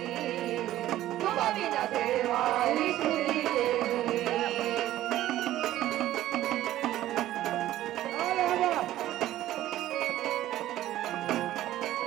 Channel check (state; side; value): quieter; left; 14.0 dB